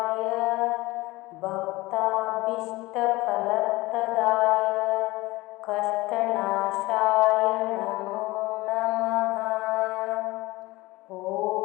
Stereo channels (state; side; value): quieter; right; 20.6 dB